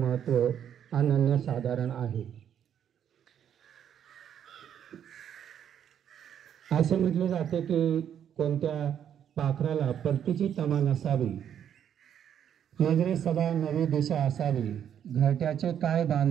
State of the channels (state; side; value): quieter; left; 9.2 dB